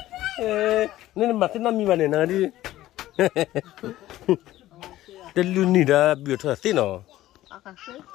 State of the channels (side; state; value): right; quieter; 15.0 dB